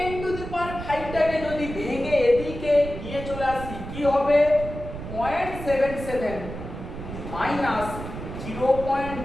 টু দি পাওয়ার 5 টাকে যদি ভেঙে এদিকে নিয়ে চলে আসি, কি হবে? 0.77 মাইনাস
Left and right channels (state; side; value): noise; right; rumble, 9 dB below the sound